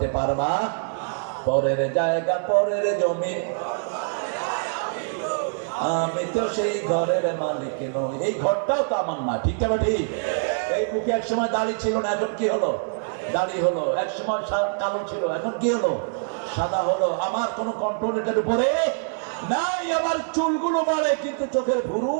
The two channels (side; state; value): left; silent; 55 dB below the other